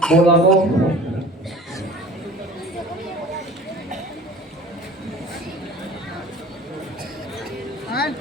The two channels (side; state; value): both; normal; correlation 0.44